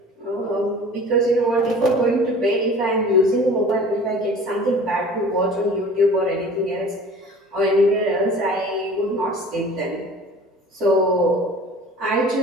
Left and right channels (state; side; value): normal; both; correlation 0.44